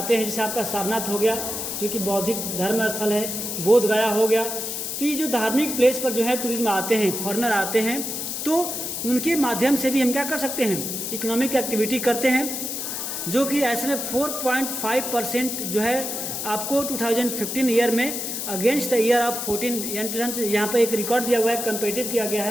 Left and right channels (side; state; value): left; noise; hiss, 4 dB below the sound